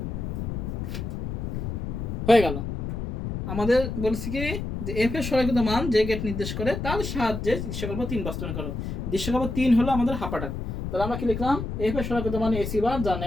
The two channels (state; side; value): noise; left; rumble, 4 dB below the sound